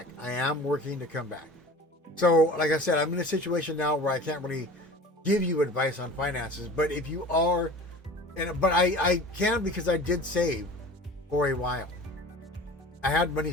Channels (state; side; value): normal; both; correlation 0.40